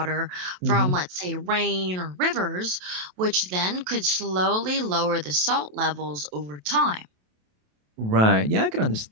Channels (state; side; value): late; left; 27 ms